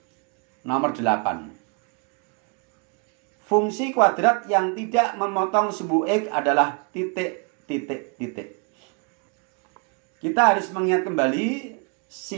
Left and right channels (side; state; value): left; quieter; 35.8 dB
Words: Nomor 8. Fungsi kuadrat yang tidak memotong sumbu X adalah titik. Kita harus mengingat kembali